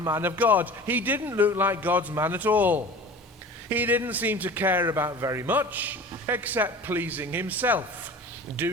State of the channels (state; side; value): normal; both; correlation 0.39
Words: of God. He didn't look like God's man at all. He didn't seem to care about very much except pleasing himself,